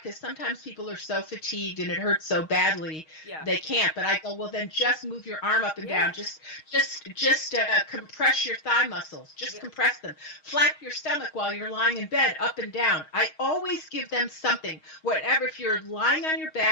sometimes people are so fatigued and it hurts so badly they can't. But I go, well, then just move your arm up and down. Just compress your thigh muscles. Just compress them. Flap your stomach while you're lying in bed, up and down. I always give them something. Whatever, if you're lying on your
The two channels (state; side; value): late; right; 6.4 ms